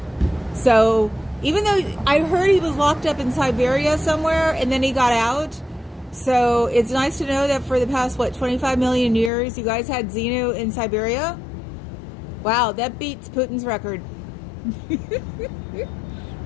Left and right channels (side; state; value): right; drops out; at 9.3 s